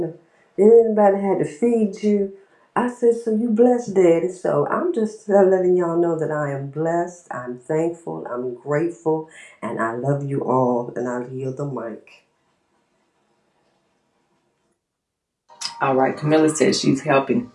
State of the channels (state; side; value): identical; both; correlation 1.00